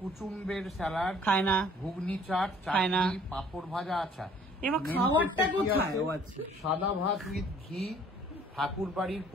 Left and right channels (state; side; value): normal; both; correlation 0.57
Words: স্যালাড খায় না। ঘুগনি চাট, চাটনি, পাঁপড় ভাজা। আচ্ছা, এবার খাবারটা কোথায়? সাদা ভাত উইথ ঘি, ঠাকুর বাড়ির